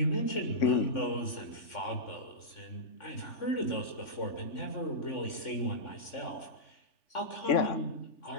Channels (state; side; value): late; right; 3.5 ms